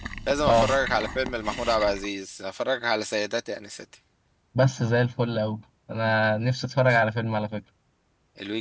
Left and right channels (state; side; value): identical; both; correlation 1.00